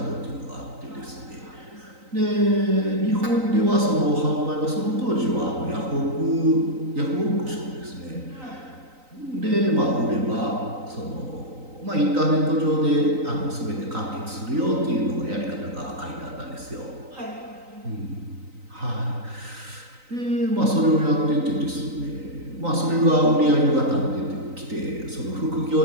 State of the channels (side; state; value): left; late; 3.9 ms